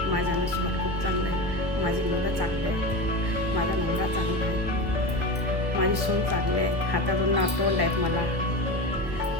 माझ्या नशिबात खूप चांगलं आहे. माझी मुलं चांगली आहेत, माझा नवरा चांगला आहे, माझी सून चांगली आहे. हातात 2 नातवंड आहेत मला,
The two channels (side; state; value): left; late; 1.3 ms